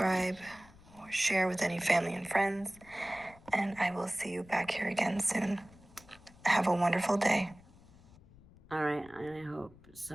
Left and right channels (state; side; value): noise; left; rumble, 24 dB below the sound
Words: or share with any family and friends. And I will see you back here again soon. Have a wonderful day. All right, and I hope